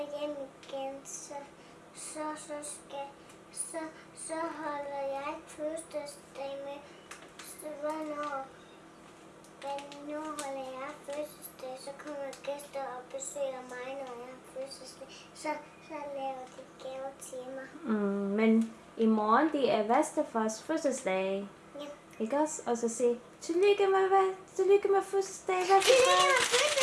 hjem igen. Så holder jeg fødselsdag med. Hvornår holder jeg fødselsdag, så kommer gæster og besøger mig, når jeg har fødselsdag. Så laver de gaver til mig. Men i morgen, det er bedstefars fødselsdag. Ja. Ikke også? Og så sige, tillykke med fødselsdag, bedstefar. Tillykke med fødselsdag!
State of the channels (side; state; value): both; identical; correlation 1.00